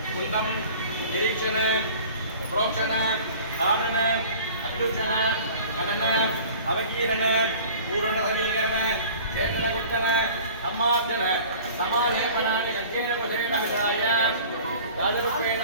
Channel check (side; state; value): both; inverted; correlation -0.44